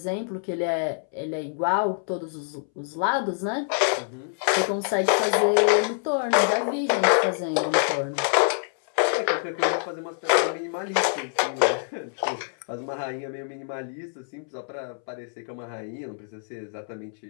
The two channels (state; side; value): silent; right; 61 dB below the other